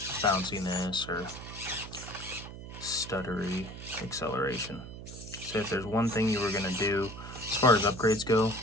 bounciness or stuttery acceleration. So if there's one thing you were going to do as far as upgrades go,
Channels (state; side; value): noise; right; hum, 12 dB below the sound